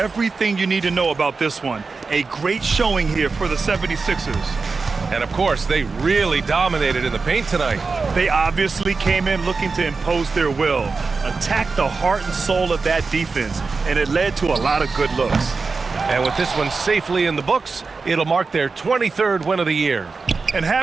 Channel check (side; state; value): left; quieter; 4.4 dB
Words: you need to know about this one. A great showing here for the 76ers. And of course, they really dominated in the paint tonight. They obviously came in looking to impose their will, attack the heart and soul of that defense, and it led to a lot of good looks. And with this one safely in the books, it'll mark their 23rd win of the year. And